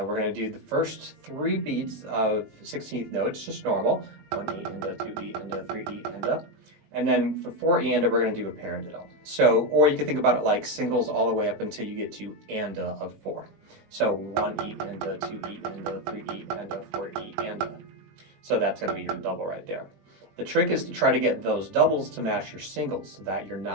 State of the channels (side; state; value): left; late; 20 ms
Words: going to do the first 3 beats of 16th notes, just normal, 1 E and a 2 E and a 3 E and a, and then for 4 E and a we're going to do a paradiddle. So, or you can think about it like singles all the way up until you get to and a of 4. So 1 E and a, 2 E and a, 3 E and a, 4 E and a. So that's going to be your double right there. The trick is to try to get those doubles to match your singles so that you're